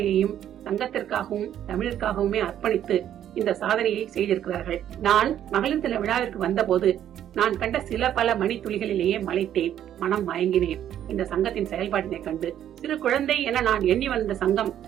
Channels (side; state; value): left; quieter; 10.7 dB